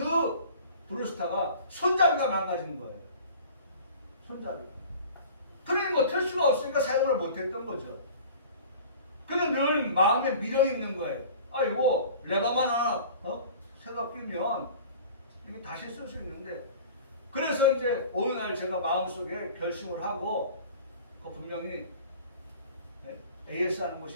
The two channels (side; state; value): both; inverted; correlation -0.43